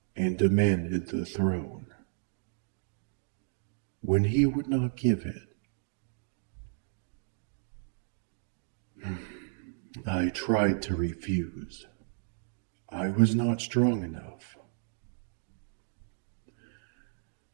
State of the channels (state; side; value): silent; left; digital silence